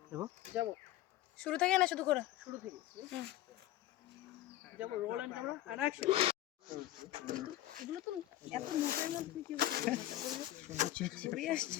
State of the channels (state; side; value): quieter; right; 14.3 dB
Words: দেখো যাবো শুরু থেকে না শুধু করে শুরু থেকে যাবো roll and camera and action এগুলো তো এত মোটের মধ্যে কি ঘুরে আসছে